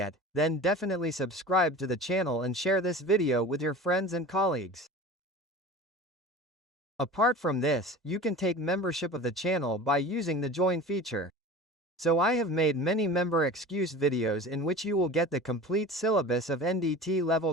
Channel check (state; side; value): normal; both; correlation 0.37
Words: then definitely subscribe to the channel and share this video with your friends and colleagues. Apart from this, you can take membership of the channel by using the join feature. So I have made many member excuse videos in which you will get the complete syllabus of NDT